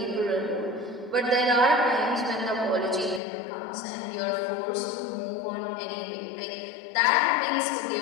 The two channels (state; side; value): drops out; right; at 3.2 s